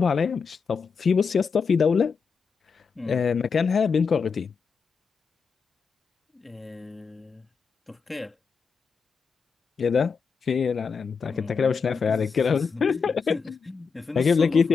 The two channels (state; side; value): quieter; right; 5.5 dB